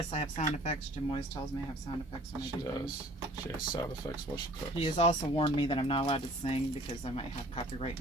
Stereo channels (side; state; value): both; normal; correlation 0.51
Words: I have sound effects. Jim always tells me I have sound effects when I She do things. does. She has sound effects while she cooks. He has also warned me that I'm not allowed to sing because I might have copyright